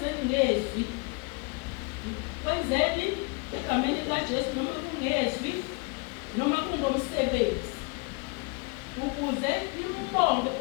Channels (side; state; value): right; quieter; 30.2 dB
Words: ngezwi, kwenzeni egameni likaJesu noma kungezwi noma kungomsebenzi ukuze imbonge